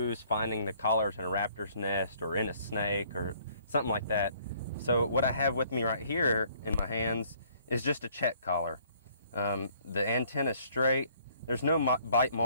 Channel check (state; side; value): inverted; both; correlation -0.62